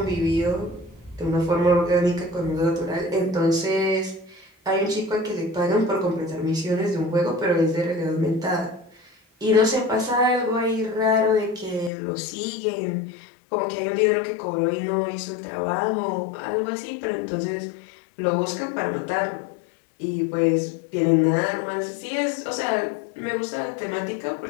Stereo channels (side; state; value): right; drops out; at 11.9 s